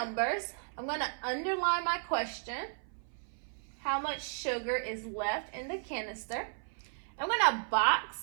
I'm going to underline my question. How much sugar is left in the canister? I'm going to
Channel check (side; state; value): left; silent; 55 dB below the other